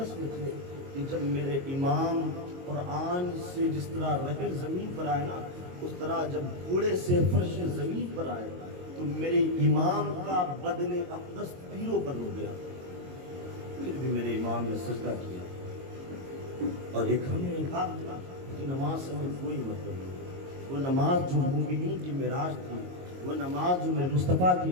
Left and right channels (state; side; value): late; left; 22 ms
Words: میں تھے کہ جب میرے امام قرآن سے جس طرح رحل زمین پر آئے نا، اس طرح جب گھوڑے سے فرش زمین پر آئے تو میرے امام کا بدن اقدس تیروں پر ہو گیا، پھر بھی میرے امام نے سجدہ کیا۔ اور ایک ہمیں کہا کہ نماز سے ہمیں کوئی مطلب نہیں، وہ نماز جو مومنین کی معراج تھی، وہ نماز جو میرے مصطفیٰ